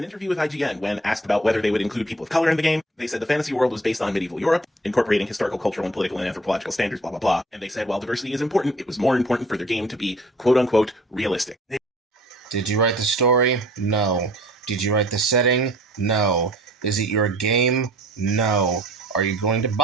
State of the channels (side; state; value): both; normal; correlation 0.53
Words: interview with IGN, when asked about whether they would include people of color in the game, they said the fantasy world was based on medieval Europe, incorporating historical, cultural, and political and anthropological standards, blah, blah, blah. And they said while diversity is important, it was more important for their game to be, quote-unquote, realistic. Did you write the story? No. Did you write the setting? No. Is it your game? No. Are you going to